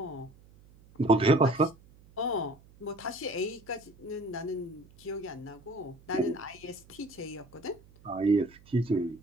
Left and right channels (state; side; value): noise; right; hum, 25 dB below the sound